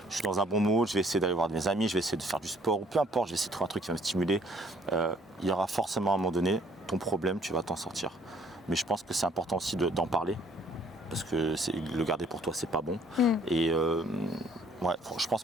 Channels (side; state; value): both; normal; correlation 0.61